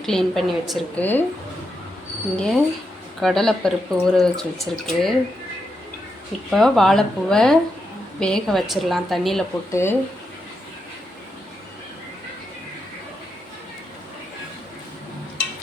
க்ளீன் பண்ணி வச்சுருக்கு. இங்கே கடலைப்பருப்பு ஊற வச்சுருக்கு. இப்போ வாழைப்பூவை வேக வச்சிடலாம் தண்ணியில் போட்டு.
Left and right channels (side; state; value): both; normal; correlation 0.84